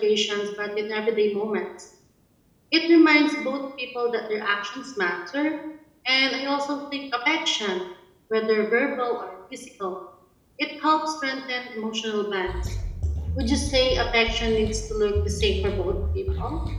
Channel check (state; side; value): identical; both; correlation 1.00